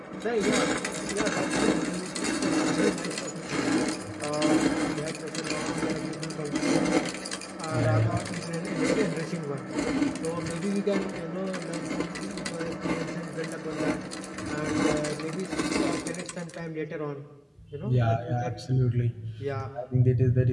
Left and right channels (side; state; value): both; identical; correlation 1.00